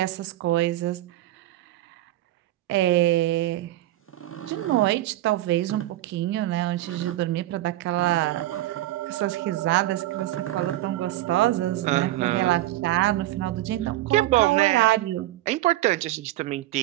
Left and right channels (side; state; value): left; quieter; 15.6 dB